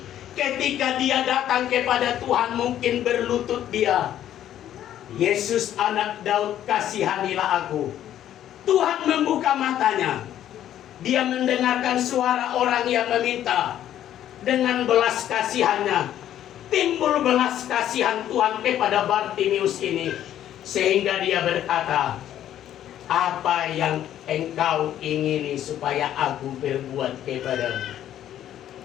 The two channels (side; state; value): right; quieter; 11.4 dB